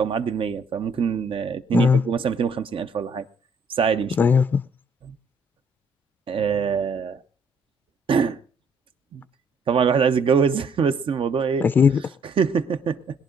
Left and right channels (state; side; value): normal; both; correlation 0.64